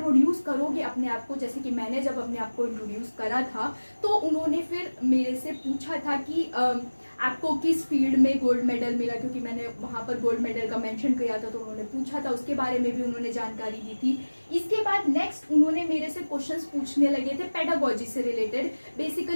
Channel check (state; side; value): inverted; both; correlation -1.00